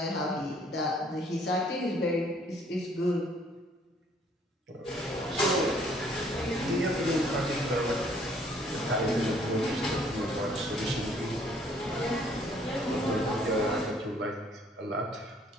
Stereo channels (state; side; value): normal; both; correlation 0.62